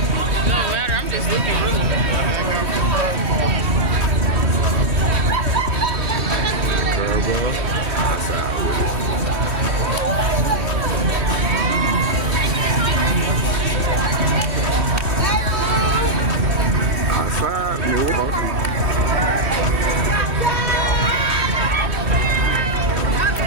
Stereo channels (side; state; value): left; late; 3.1 ms